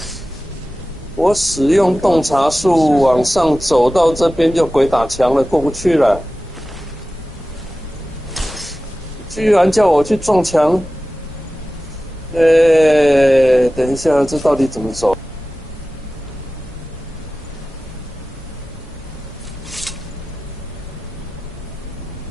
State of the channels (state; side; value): normal; both; correlation 0.96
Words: 我使用洞察术往上走到这边就鬼打墙了，过不去了。居然叫我去撞墙，等一下，这到底怎么走